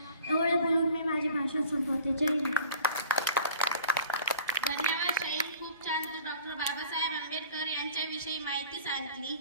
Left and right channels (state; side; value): inverted; both; correlation -0.47